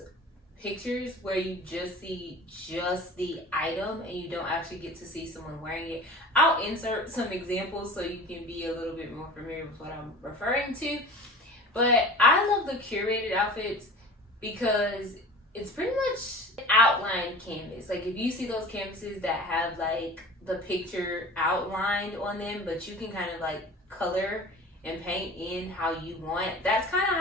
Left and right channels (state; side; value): normal; both; correlation 0.39